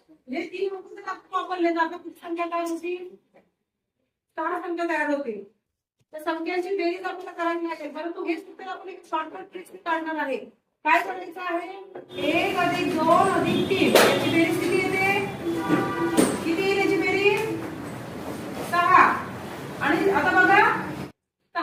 हे 3 अंक वापरले जातात. किती संख्या तयार होतील? 6 संख्या तयार होतील. तर संख्यांची बेरीज आपल्याला करायची आहे, परंतु हे सूत्र आपण एक शॉर्टकट ट्रिक काढणार आहे. काय करायचं आहे? 1 + 2 + 3 याची बेरीज किती येते? किती येईल याची बेरीज? 6. आणि आता बघा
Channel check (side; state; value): both; identical; correlation 1.00